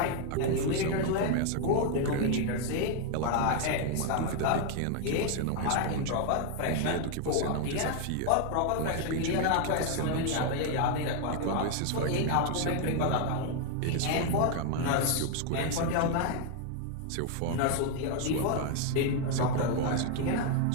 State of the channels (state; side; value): different; both; correlation 0.00